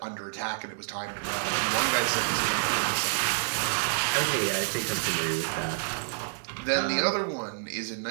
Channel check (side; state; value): left; silent; 59 dB below the other